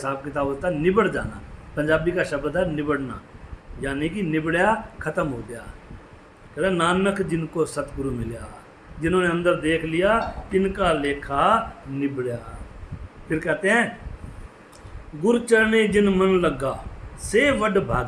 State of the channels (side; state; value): both; identical; correlation 1.00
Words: किताब होता है। निबड़ जाना, पंजाबी का शब्द है निबड़ना, यानी कि निबड़िया, ख़त्म हो गया। कहते नानक जिनको सतगुरु मिलया, जिन्होंने अंदर देख लिया तिनका लेखा निबड़िया। फिर कहते हैं गुरु चरणे जिन मन लगा से वड